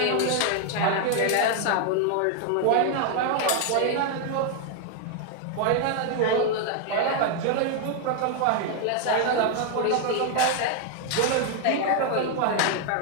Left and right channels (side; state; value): both; different; correlation 0.00